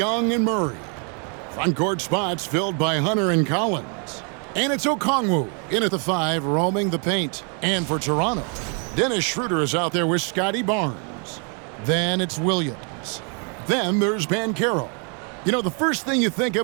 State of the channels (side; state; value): left; quieter; 39.1 dB